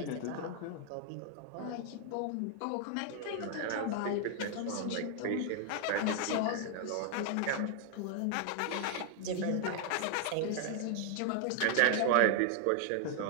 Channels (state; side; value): different; both; correlation 0.00